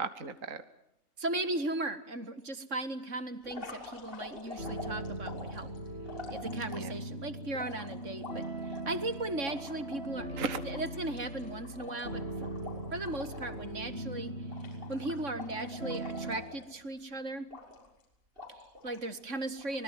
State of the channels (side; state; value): left; late; 3.6 ms